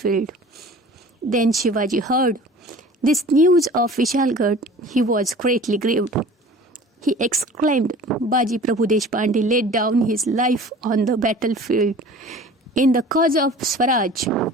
Then Shivaji heard this news of Vishalgarh. He was greatly grieved. He exclaimed, Baji Prabhu Deshpande laid down his life on the battlefield in the cause of Swaraj.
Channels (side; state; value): both; normal; correlation 0.43